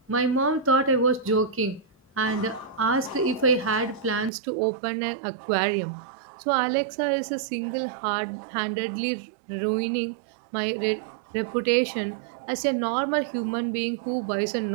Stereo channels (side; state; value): left; drops out; at 4.3 s